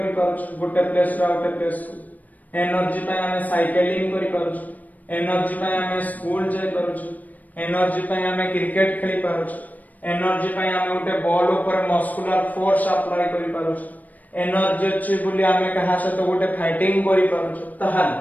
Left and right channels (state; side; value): late; right; 0.079 ms